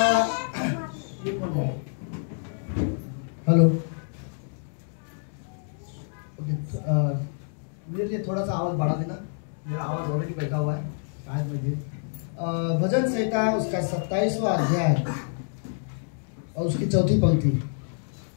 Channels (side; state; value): right; silent; digital silence